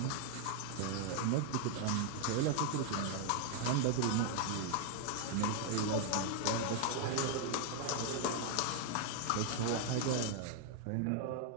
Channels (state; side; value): different; both; correlation 0.00